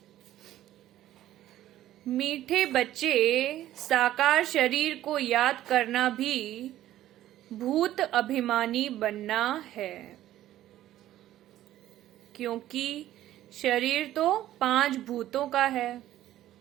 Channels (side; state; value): left; quieter; 13.5 dB